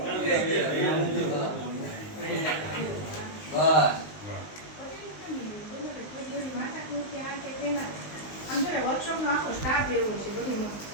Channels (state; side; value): late; right; 19 ms